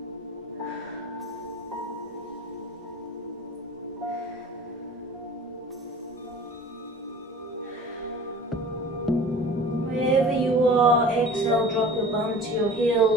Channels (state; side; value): normal; both; correlation 0.42